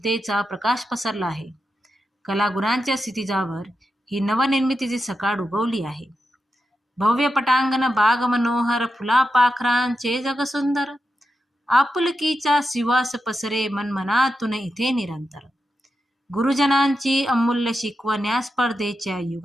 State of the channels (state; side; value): normal; both; correlation 0.88